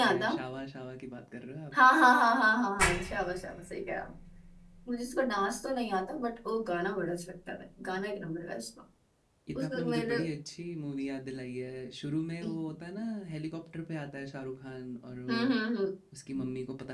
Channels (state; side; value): identical; both; correlation 1.00